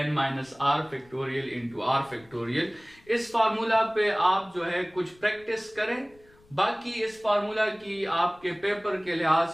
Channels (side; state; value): left; noise; rumble, 29 dB below the sound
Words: n minus r factorial into r factorial. इस फार्मूला पे आप जो है कुछ प्रैक्टिस करें। बाकी इस फार्मूला की आपके पेपर के लिहाज